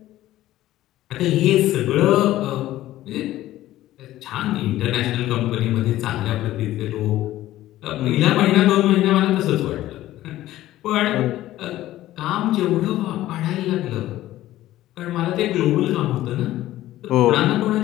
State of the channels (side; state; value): right; quieter; 14.8 dB